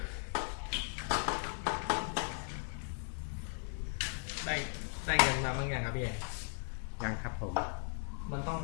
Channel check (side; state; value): right; silent; 53 dB below the other